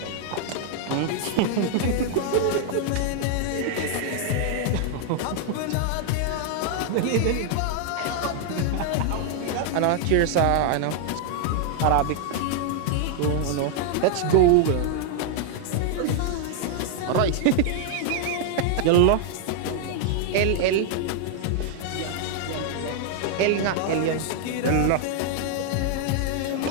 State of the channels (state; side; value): different; both; correlation 0.00